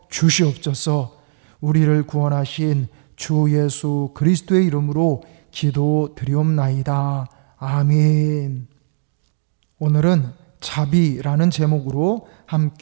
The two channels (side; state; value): left; silent; digital silence